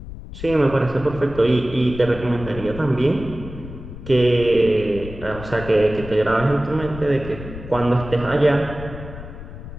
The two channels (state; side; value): noise; left; rumble, 12 dB below the sound